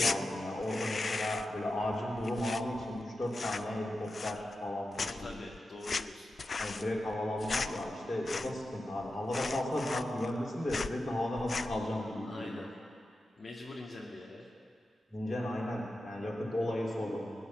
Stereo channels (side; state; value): both; normal; correlation 0.91